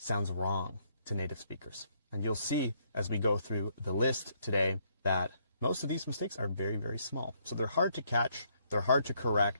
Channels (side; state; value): both; inverted; correlation -0.71